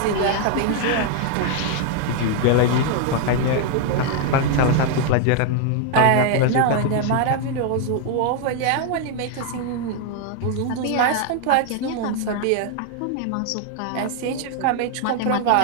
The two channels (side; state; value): both; different; correlation 0.00